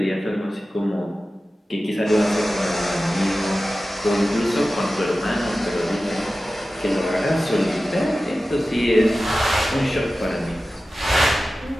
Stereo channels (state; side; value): normal; both; correlation 0.95